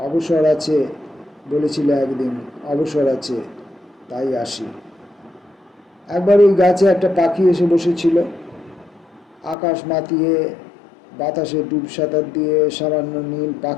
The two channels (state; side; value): drops out; right; at 9.6 s